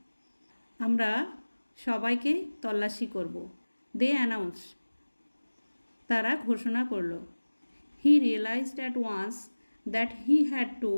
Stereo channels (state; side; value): inverted; both; correlation -1.00